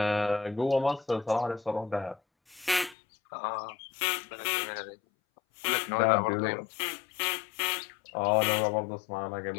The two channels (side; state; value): right; drops out; at 3.0 s